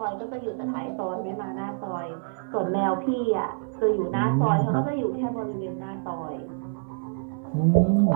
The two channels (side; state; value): left; silent; 60 dB below the other